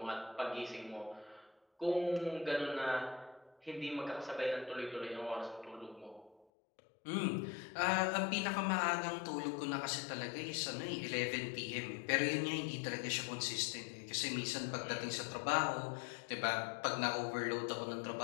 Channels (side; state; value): right; drops out; at 6.5 s